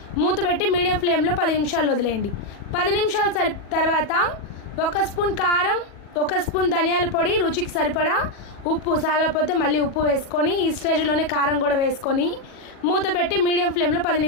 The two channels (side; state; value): right; late; 40 ms